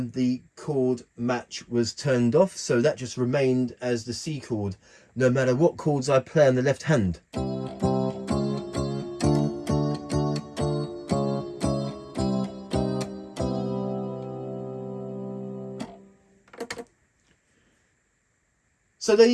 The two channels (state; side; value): identical; both; correlation 1.00